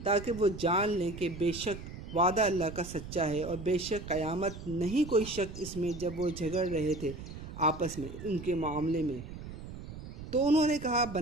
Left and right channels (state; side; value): noise; right; rumble, 11 dB below the sound